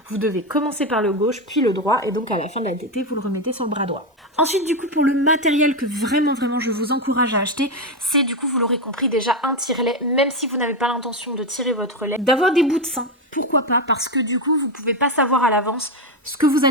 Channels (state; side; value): normal; both; correlation 0.11